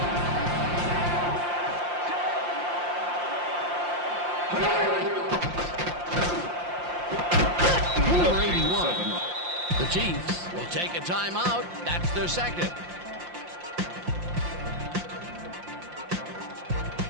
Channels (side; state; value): left; late; 5.7 ms